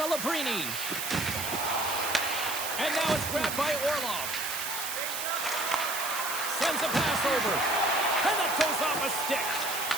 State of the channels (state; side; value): noise; right; hiss, 4 dB below the sound